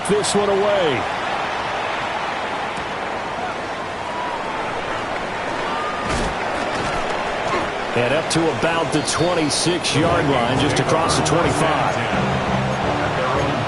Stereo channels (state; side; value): identical; both; correlation 1.00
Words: this one away. And up to about the 26-yard line, just across the 25.